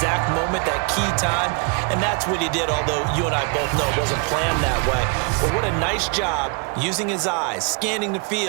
moment, that key time, and that's what he did, although you and I both know it wasn't planned that way. But what a nice job using his eyes, scanning the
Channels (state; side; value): quieter; left; 33.8 dB